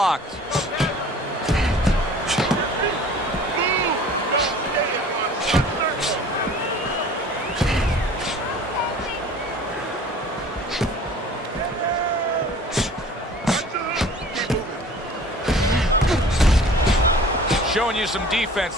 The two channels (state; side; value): normal; both; correlation 0.46